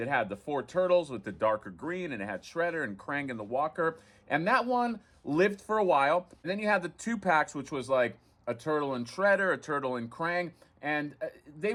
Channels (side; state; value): both; identical; correlation 1.00